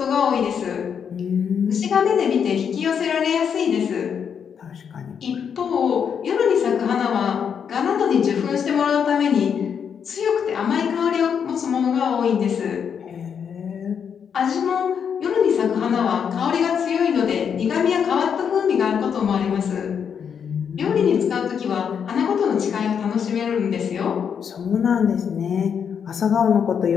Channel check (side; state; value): right; quieter; 7.4 dB